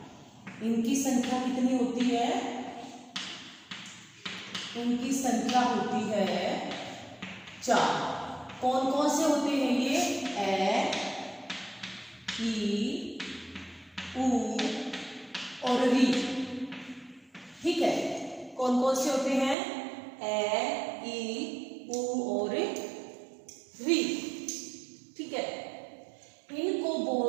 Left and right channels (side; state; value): left; drops out; at 19.6 s